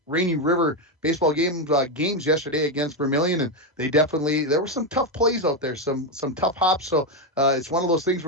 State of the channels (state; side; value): normal; both; correlation 0.07